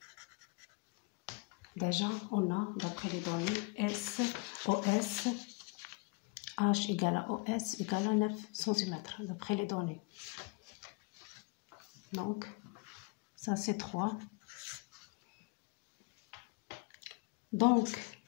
Déjà, on a, d'après les données, OS H égale à OS égale à 9 cm, d'après les données. Donc, ça c'est 3. Donc,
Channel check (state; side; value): quieter; right; 27.5 dB